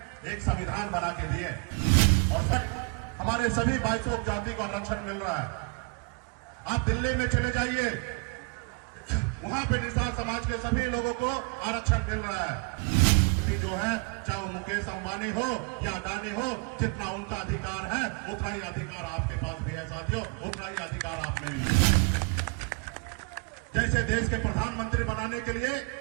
एक संविधान बना के दिए और हमारे सभी 22 जाति को आरक्षण मिल रहा है। आप दिल्ली में चले जाइए, वहां पे निषाद समाज के सभी लोगों को आरक्षण मिल रहा है। जो है चाहे वो मुकेश अंबानी हो या अडानी हो, जितना उनका अधिकार है उतना ही अधिकार आपके पास भी है साथियों, उतना ही अधिकार आप में भी है। जैसे देश के प्रधानमंत्री बनाने के लिए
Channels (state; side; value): quieter; left; 34.0 dB